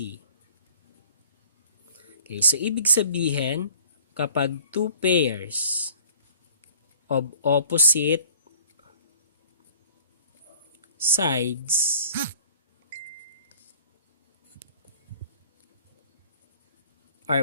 Okay, so ibig sabihin, kapag two pairs of opposite sides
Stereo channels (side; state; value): both; inverted; correlation -0.51